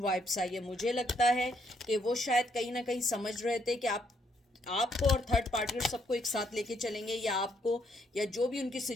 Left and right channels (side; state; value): both; normal; correlation 0.73